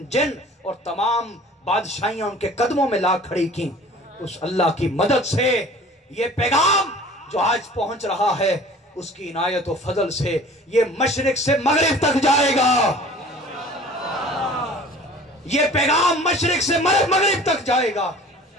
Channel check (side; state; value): both; normal; correlation 0.46